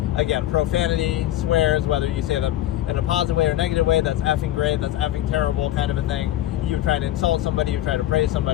again, profanity, swears, whether you say them in a positive way or negative way, that's effing great, that's effing terrible kind of a thing. You try to insult somebody, you try to praise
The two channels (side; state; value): right; quieter; 13.6 dB